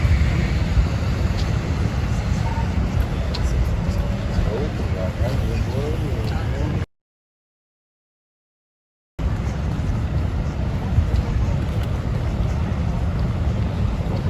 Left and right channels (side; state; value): both; identical; correlation 1.00